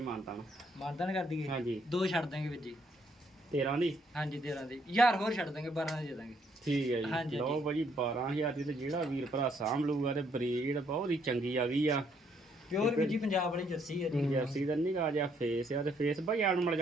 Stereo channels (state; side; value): normal; both; correlation 0.70